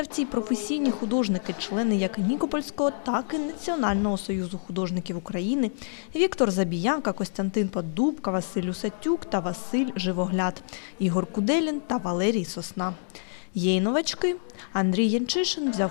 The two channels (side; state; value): right; silent; 59 dB below the other